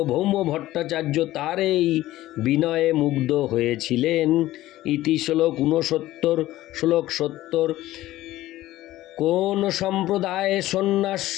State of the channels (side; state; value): right; quieter; 15.7 dB